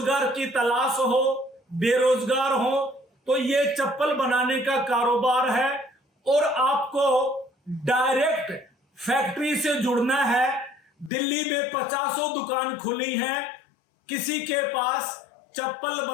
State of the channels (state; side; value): drops out; right; at 11.1 s